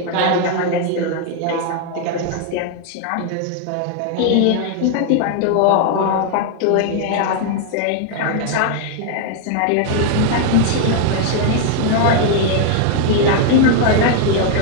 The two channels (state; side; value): different; both; correlation 0.00